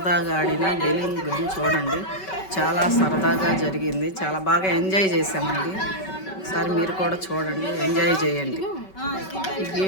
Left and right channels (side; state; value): right; late; 5.3 ms